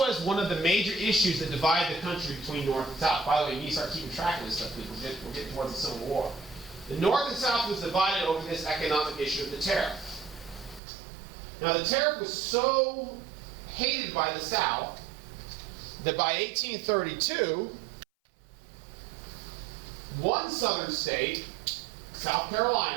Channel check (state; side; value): drops out; left; at 10.8 s